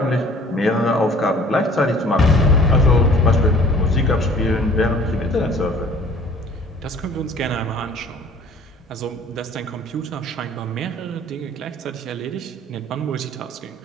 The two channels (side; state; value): both; normal; correlation 0.52